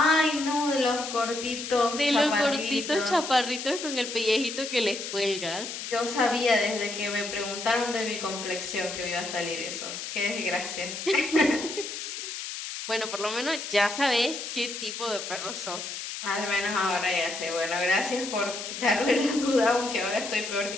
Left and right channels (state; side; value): noise; left; hiss, 7 dB below the sound